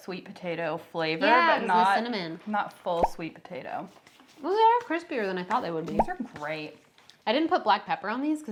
potato flavor, Yeah, but not cinnamon. Not full sweet potato. Well, they are crispier than I thought they would be. These are great. I didn't put black pepper on these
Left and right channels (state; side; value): identical; both; correlation 1.00